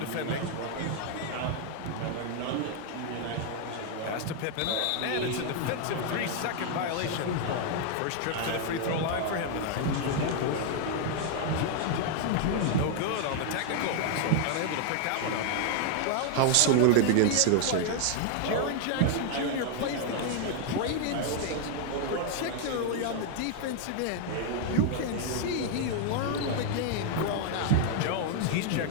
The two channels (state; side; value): different; both; correlation 0.00